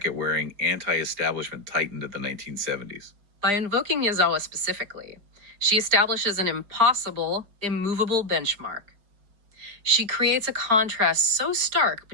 wearing, anti establishment titan of the 1970s. By invoking Yazawa specifically, she establishes an impossible, immovable benchmark. She creates a contrast so stark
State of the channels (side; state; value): left; late; 4.9 ms